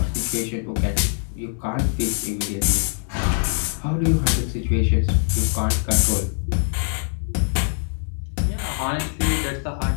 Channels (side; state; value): right; silent; 63 dB below the other